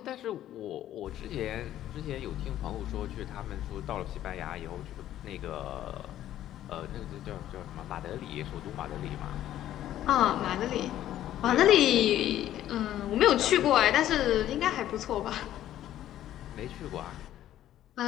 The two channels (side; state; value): right; quieter; 12.4 dB